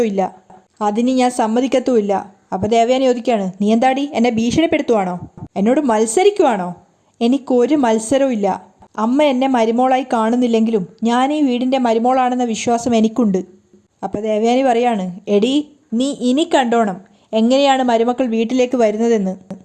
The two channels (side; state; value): both; identical; correlation 1.00